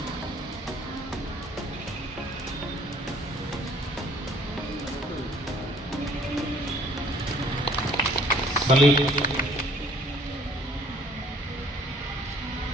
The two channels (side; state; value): both; normal; correlation 0.57